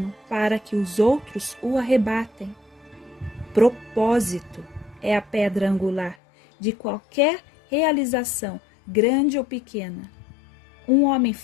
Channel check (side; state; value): right; drops out; at 6.2 s